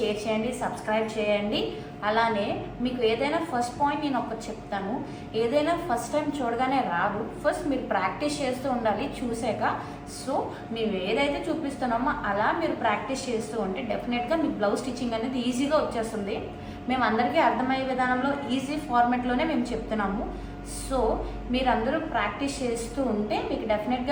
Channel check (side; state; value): both; identical; correlation 1.00